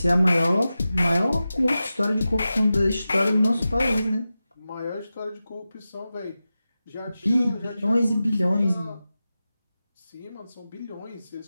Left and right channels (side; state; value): both; inverted; correlation -0.94